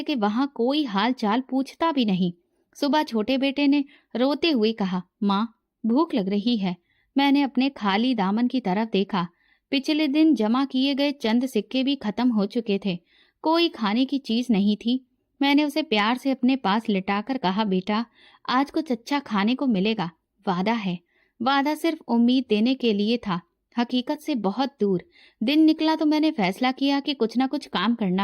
के वहां कोई हाल चाल पूछता भी नहीं। सुबह छोटे बेटे ने रोते हुए कहा, माँ भूख लग रही है। मैंने अपने खाली दामन की तरफ देखा। पिछले दिन जमा किए गए चंद सिक्के भी खत्म हो चुके थे। कोई खाने की चीज नहीं थी। मैंने उसे प्यार से अपने पास लिटाकर कहा, बेटा आज कुछ अच्छा खाने को मिलेगा, वादा है। वादा सिर्फ उम्मीद देने के लिए था, हकीकत से बहुत दूर। दिन निकला तो मैंने फैसला किया कि कुछ ना कुछ काम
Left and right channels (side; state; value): both; identical; correlation 1.00